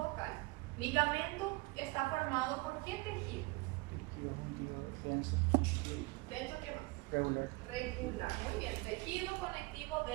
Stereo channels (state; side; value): quieter; left; 24.4 dB